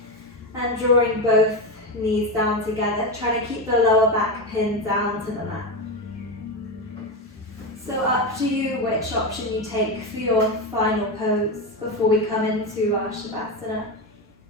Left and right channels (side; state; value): both; normal; correlation 0.15